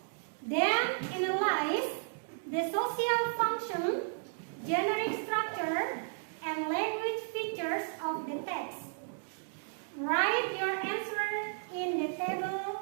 then analyze the social function, generic structure, and language features of the text. Write your answer in the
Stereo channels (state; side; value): silent; left; digital silence